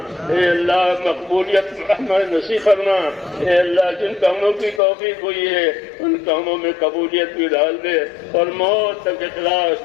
اے اللہ مقبولیت ہمیں نصیب فرما۔ اے اللہ جن کاموں کی توفیق ہوئی ہے ان کاموں میں قبولیت بھی ڈال دے، اور موت تک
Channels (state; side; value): drops out; right; at 4.8 s